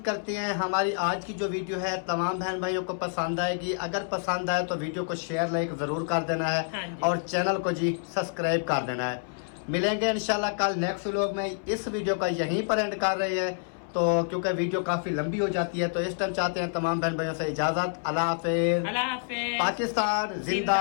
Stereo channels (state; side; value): silent; right; 59 dB below the other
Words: करते हैं हमारी आज की जो वीडियो है तमाम बहन भाइयों को पसंद आएगी। अगर पसंद आए तो वीडियो को शेयर लाइक ज़रूर कर देना हाँ है जी। और चैनल को जी सब्सक्राइब कर देना है। मिलेंगे इंशाल्लाह कल नेक्स्ट व्लॉग में। इस वीडियो का यहीं पर एंड कर रहे हैं तो क्योंकि वीडियो काफ़ी लंबी हो जाती है, तो इस टाइम चाहते हैं तमाम बहन भाइयों से इजाज़त। अल्लाह हाफिज़। अल्लाह हाफिज़। पाकिस्तान